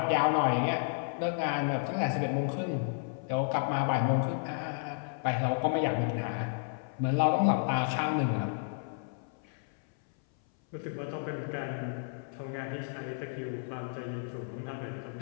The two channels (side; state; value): right; silent; 56 dB below the other